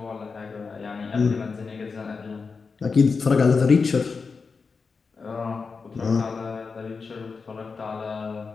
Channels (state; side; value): quieter; right; 4.9 dB